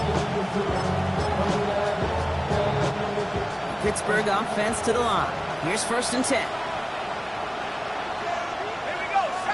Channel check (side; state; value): both; identical; correlation 1.00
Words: Pittsburgh offense to the line. Here's 1st and 10.